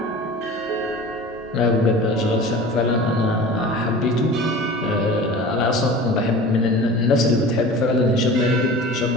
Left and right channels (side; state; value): both; normal; correlation 0.37